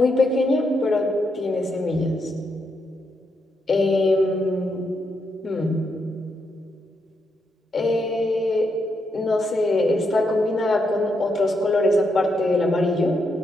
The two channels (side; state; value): both; normal; correlation 0.80